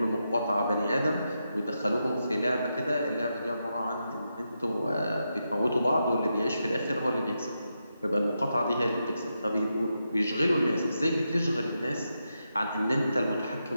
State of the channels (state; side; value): inverted; both; correlation -0.86